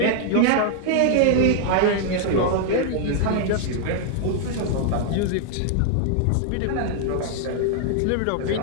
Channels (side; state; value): both; different; correlation 0.00